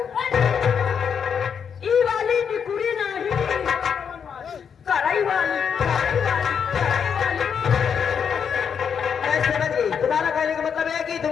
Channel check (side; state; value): right; quieter; 7.2 dB